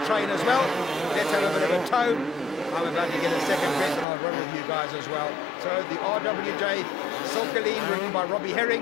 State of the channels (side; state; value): right; drops out; at 4.0 s